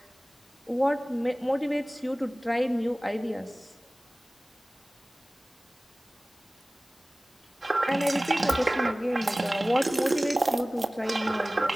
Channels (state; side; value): normal; both; correlation 0.98